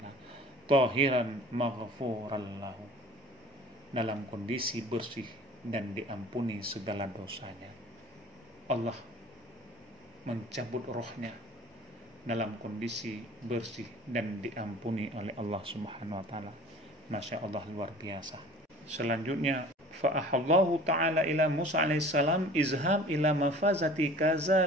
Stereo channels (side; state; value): both; normal; correlation 0.45